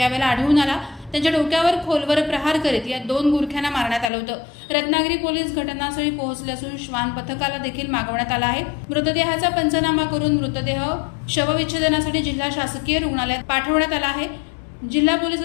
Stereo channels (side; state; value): right; drops out; at 4.1 s